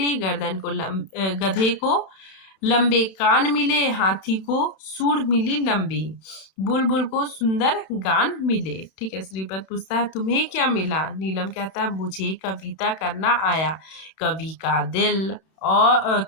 गर्दन को गधे को लंबे कान मिले, हाथी को सूंड मिली लंबी, बुलबुल को सुंदर गान मिले। ठीक है, श्रीपद पूछता है तुम्हें क्या मिला। नीलम कहता है मुझे कविता करना आया, कवि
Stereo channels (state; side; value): late; right; 31 ms